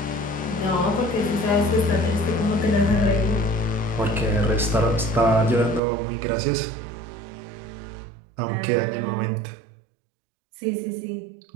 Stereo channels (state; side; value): drops out; left; at 5.8 s